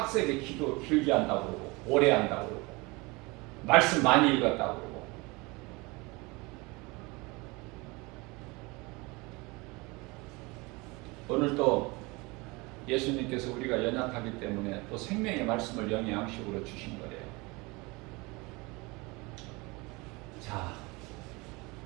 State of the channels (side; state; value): left; quieter; 25.3 dB